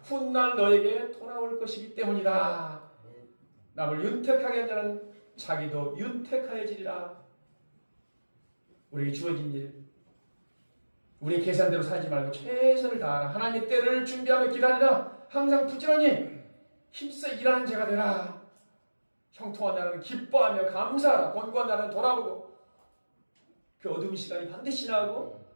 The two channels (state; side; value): inverted; both; correlation -1.00